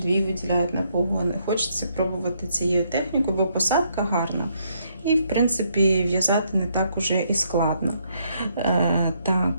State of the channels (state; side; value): inverted; both; correlation -0.73